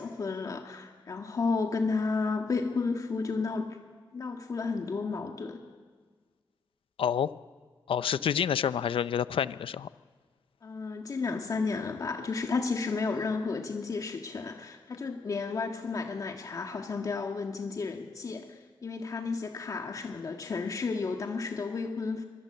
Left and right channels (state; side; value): quieter; right; 4.8 dB